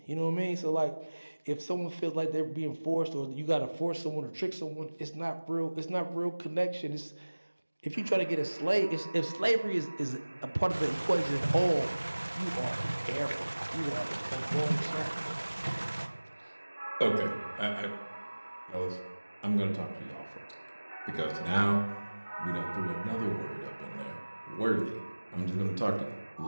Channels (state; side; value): inverted; both; correlation -1.00